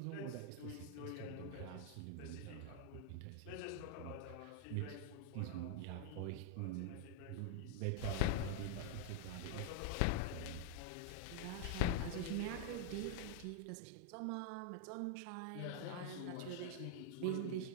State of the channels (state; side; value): different; both; correlation 0.00